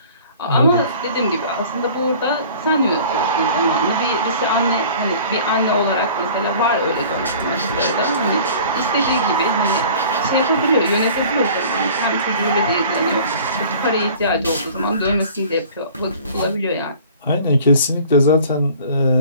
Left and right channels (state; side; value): inverted; both; correlation -0.47